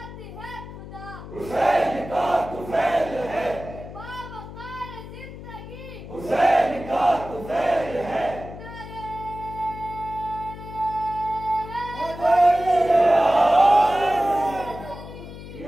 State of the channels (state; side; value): noise; left; hum, 13 dB below the sound